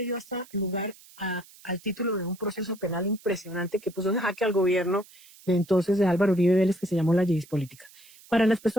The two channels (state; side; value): noise; right; hiss, 24 dB below the sound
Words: dio hasta lugar al título de un proceso penal impresionante que puso en jaque al gobierno de entonces de Álvaro Uribe Vélez, que se llamó la Yidis política. Para las